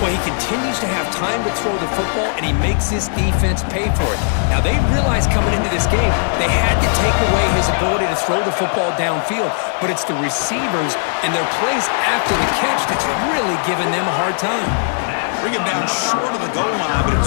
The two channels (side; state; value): right; silent; digital silence